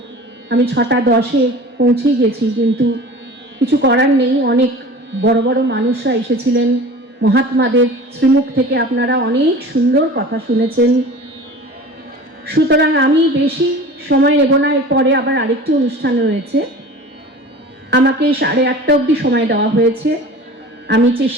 আমি 6:10-এ পৌঁছে গেছি, কিন্তু কিছু করার নেই। অনেক বড় বড় মানুষরা এসেছিলেন, মহাত্মাদের শ্রীমুখ থেকে আপনারা অনেক সুন্দর কথা শুনেছেন। সুতরাং আমি বেশি সময় নেব না, এরপরে আবার আরেকটি অনুষ্ঠান রয়েছে। আমাকে 8:30 অবধি সময় দেওয়া হয়েছে। আমি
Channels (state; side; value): normal; both; correlation 0.39